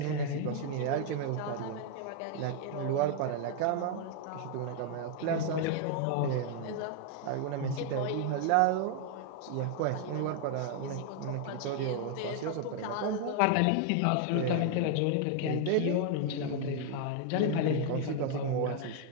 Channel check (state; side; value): different; both; correlation 0.00